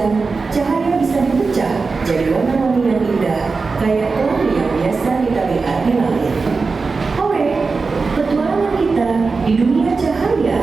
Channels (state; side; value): quieter; left; 4.3 dB